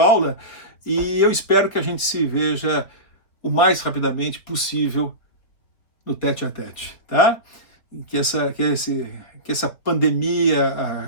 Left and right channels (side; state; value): right; late; 4.0 ms